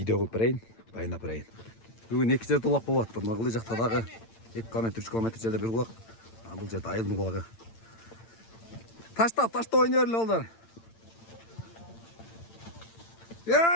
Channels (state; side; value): late; right; 8.9 ms